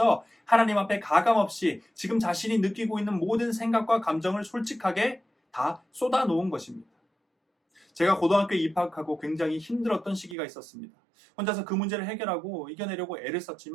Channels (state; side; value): drops out; left; at 10.4 s